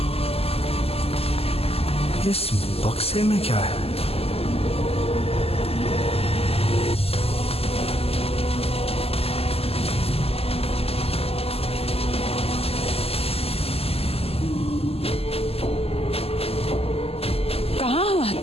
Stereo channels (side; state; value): right; late; 0.29 ms